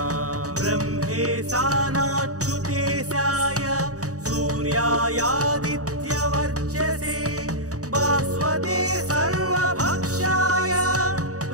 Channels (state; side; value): late; left; 0.66 ms